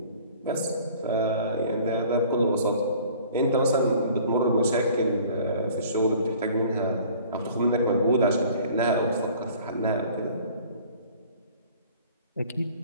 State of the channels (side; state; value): both; inverted; correlation -0.50